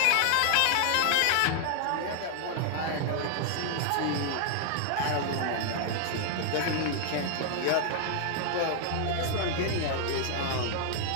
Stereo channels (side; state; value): both; different; correlation 0.00